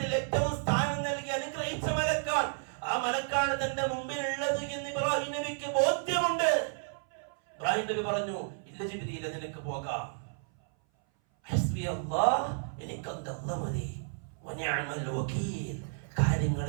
ഏറ്റവും സ്ഥാനം നൽകി അനുഗ്രഹിച്ച മലക്കാണ്. ആ മലക്കാണ് തന്റെ മുമ്പിലുള്ളത് എന്ന് ഇബ്രാഹിം നബിക്ക് ബോധ്യമുണ്ട്. ഇബ്രാഹിം നബി പറഞ്ഞു, ഇല്ല ജിബ്രീൽ, നിനക്ക് പോകാം. ഹസ്ബി അല്ലാഹ്, എനിക്ക് അല്ലാഹ് മതി. വനിഅമൽ വകീൽ, കാര്യങ്ങൾ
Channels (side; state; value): left; silent; 56 dB below the other